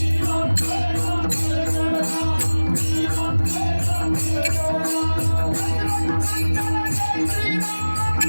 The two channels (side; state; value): both; inverted; correlation -1.00